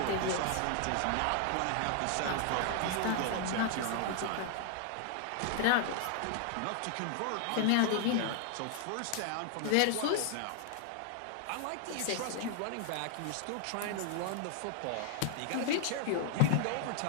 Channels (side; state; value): both; different; correlation 0.00